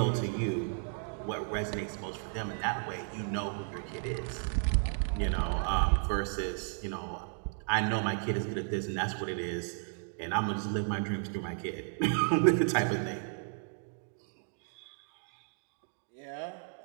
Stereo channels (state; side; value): silent; left; 55 dB below the other